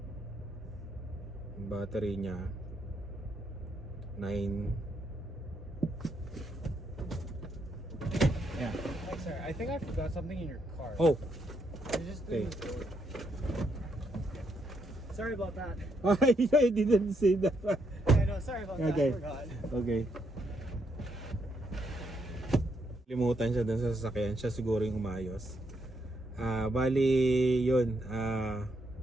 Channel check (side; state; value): both; normal; correlation 0.77